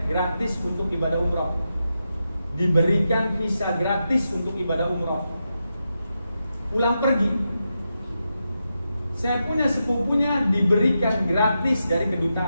gratis untuk ibadah umroh, diberikan visa gratis untuk ibadah umroh. Pulang pergi, saya punya sepupunya diberikan gratis dari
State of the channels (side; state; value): both; inverted; correlation -0.87